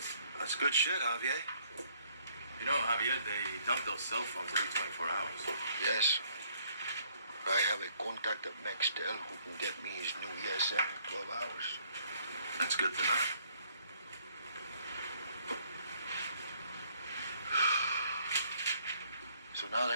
That's good shit, Javier. You know, Javier, they dump those cell phones every 24 hours. Yes. I have a contact at Nextel who can get me his new ESM in 12 hours. That's good to know. So now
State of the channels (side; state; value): both; inverted; correlation -0.64